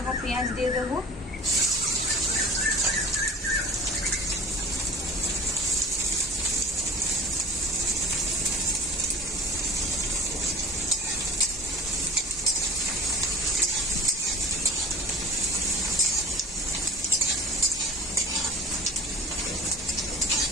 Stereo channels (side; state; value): both; normal; correlation 0.42